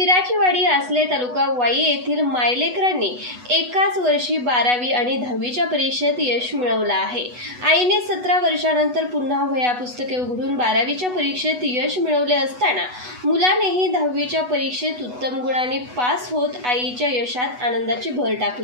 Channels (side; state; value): left; late; 8.1 ms